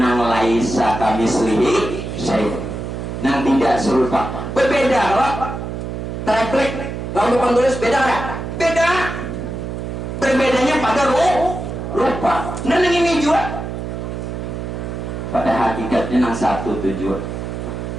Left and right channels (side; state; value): right; noise; hum, 6 dB below the sound